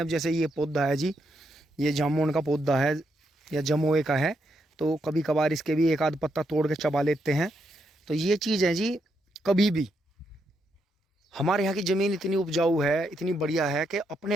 अब जैसे ये पौधा है जी, ये जामुन का पौधा है या जमोए का है, तो कभी कभार इसके भी एक आध पत्ता तोड़ के चबा लेते हैं। तो ये चीज़ है जी, कभी भी हमारे यहाँ की ज़मीन इतनी उपजाऊ है, इतनी बढ़िया है कि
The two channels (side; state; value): both; normal; correlation 0.79